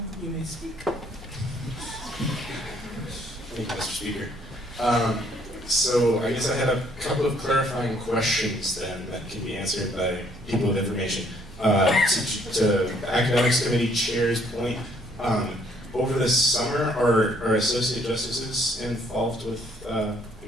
you may speak. Thank you, Mr. Speaker. So I guess I had a couple of clarifying questions then that can be answered by people with information. To Academics Committee Chair's point, over the summer, are associate justices involved with, I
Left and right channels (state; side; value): normal; both; correlation 0.64